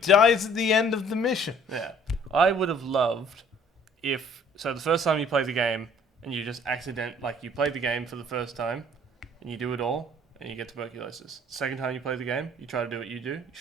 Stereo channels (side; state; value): both; normal; correlation 0.56